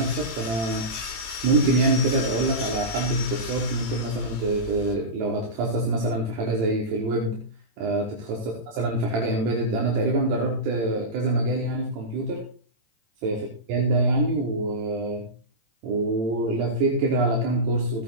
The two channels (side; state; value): left; late; 18 ms